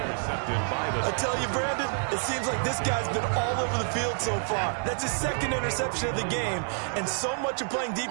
by the... I tell you, Brandon, it seems like this guy's been all over the field so far. That's his 2nd interception of the game, and so much of playing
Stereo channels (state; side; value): silent; left; 59 dB below the other